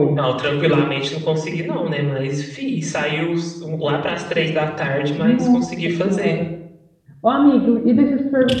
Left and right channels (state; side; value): identical; both; correlation 1.00